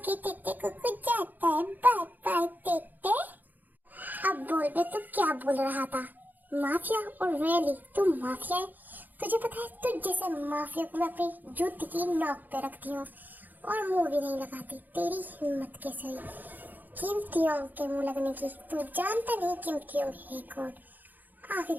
तेते, कुकू जाता है, बाय बाय तेते। अब बोल बे, तू क्या बोल रहा था? माफिया? और रियली तू माफिया है? तुझे पता है, तुझ जैसे माफिया को मैं अपनी जूती की नोक पे रखती हूँ और मुंह भी नहीं लगाती। तेरी हिम्मत कैसे हुई कीमतियों के मुंह लगने की? तू जानता नहीं कीमतियों है कौन?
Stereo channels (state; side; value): late; left; 0.085 ms